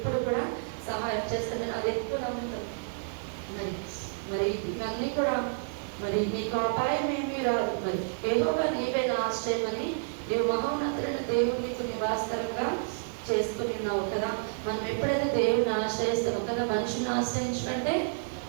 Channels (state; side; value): silent; left; 58 dB below the other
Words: కూడా సహాయం చేస్తాను. నేను అది ఎక్కువ నమ్ముతాను. మరి ఇవన్నీ కూడా మరి నీకు అపాయం ఏమీ రాదు. మరి యెహోవా నీవే నా ఆశ్రయమని నీవు మహోన్నతులైన దేవుడు నీకు నివాసకరంగా చేసుకుని ఉన్నావు కదా. మనం ఎప్పుడైతే దేవుడిని ఆశ్రయిస్తామో కదా, మనుషుల్ని ఆశ్రయించకంటే